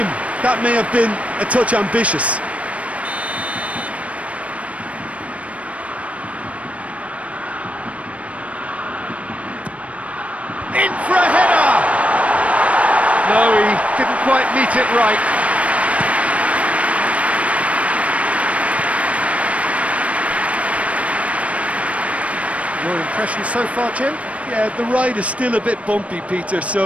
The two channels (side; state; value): left; late; 0.064 ms